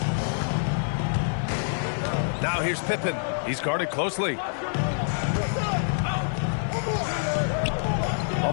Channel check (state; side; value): silent; right; 61 dB below the other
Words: Now here's Pippen. He's guarded closely.